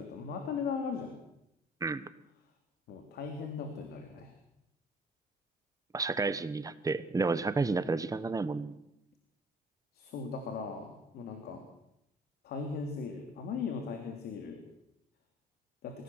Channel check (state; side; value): normal; both; correlation 0.54